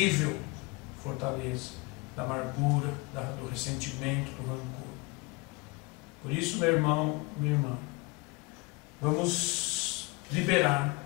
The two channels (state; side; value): quieter; right; 25.6 dB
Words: fortaleza da amargura, do ressentimento, do rancor. Por isso, meu irmão, minha irmã, vamos liberar